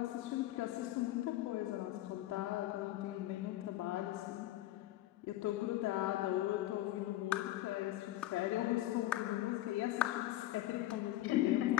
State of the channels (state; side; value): quieter; right; 15.3 dB